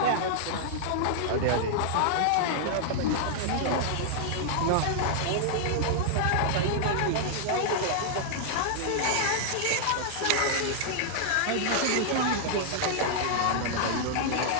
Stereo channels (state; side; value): different; both; correlation -0.01